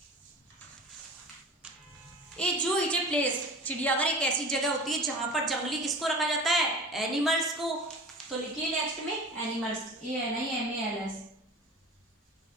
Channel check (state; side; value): normal; both; correlation 0.36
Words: ए जू इज ए प्लेस, चिड़ियाघर एक ऐसी जगह होती है जहां पर जंगली किसको रखा जाता है, एनिमल्स को। तो लिखिए नेक्स्ट में एनिमल्स, ANIMALS।